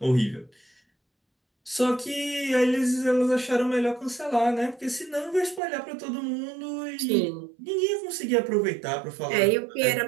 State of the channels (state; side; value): drops out; left; at 5.6 s